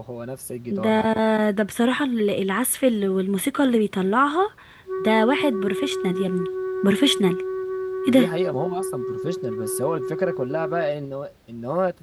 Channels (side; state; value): both; identical; correlation 1.00